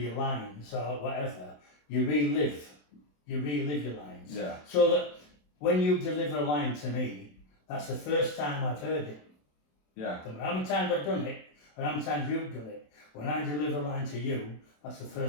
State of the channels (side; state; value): right; late; 27 ms